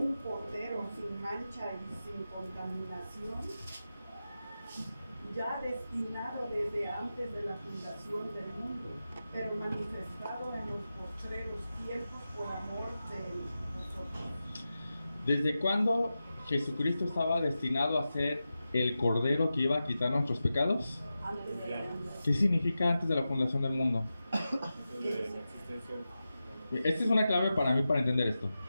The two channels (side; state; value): both; inverted; correlation -0.92